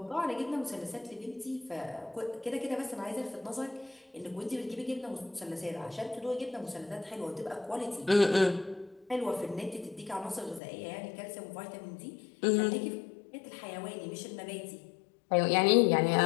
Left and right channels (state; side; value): drops out; right; at 10.6 s